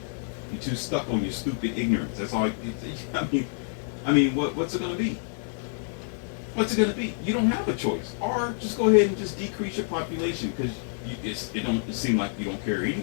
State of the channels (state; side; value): silent; right; digital silence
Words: You're too stuck on your stupid ignorance. That's all. I mean, what's it going to be? What's it going to be? You don't have a choice. Or just go ahead and just decrease your population because it seems like you don't care